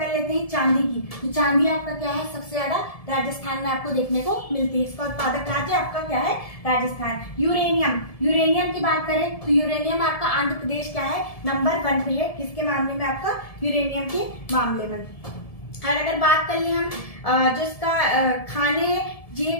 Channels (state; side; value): late; right; 1.7 ms